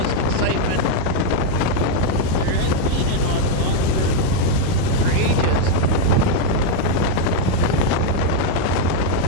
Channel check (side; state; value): both; different; correlation 0.01